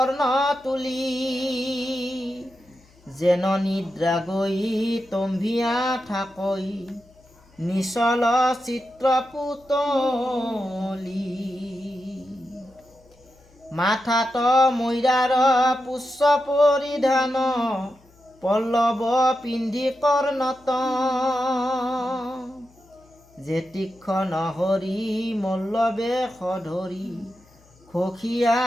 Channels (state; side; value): noise; left; hum, 29 dB below the sound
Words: তুলি যেন নিদ্ৰা গৈ তম্ভিয়া থাকৈ নিচল চিত্ৰ পুতলি মাথাত মৈৰাৰ পুষ্প পৰিধান পল্লৱ পিন্ধি কৰ্ণত যে তীক্ষ্ণ হৰি মল্লবে সধৰি খখিয়া